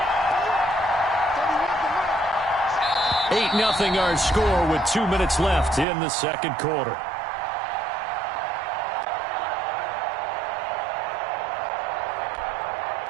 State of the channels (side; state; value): left; drops out; at 5.9 s